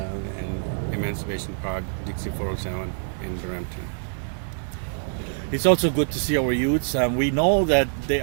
Emancipation Park, Dixie 407 in Brampton. It's also good to see our youths. We know that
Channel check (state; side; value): silent; left; 62 dB below the other